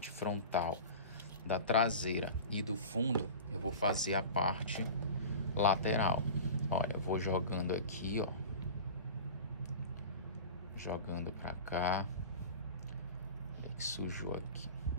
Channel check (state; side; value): inverted; both; correlation -0.34